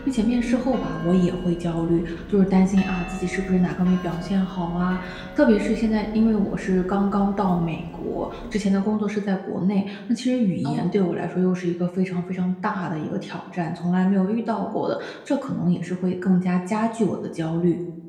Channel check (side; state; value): both; identical; correlation 1.00